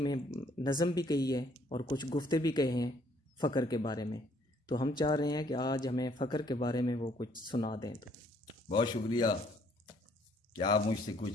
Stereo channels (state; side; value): normal; both; correlation 0.64